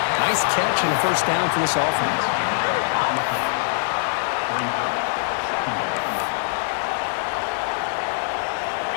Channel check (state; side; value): silent; right; digital silence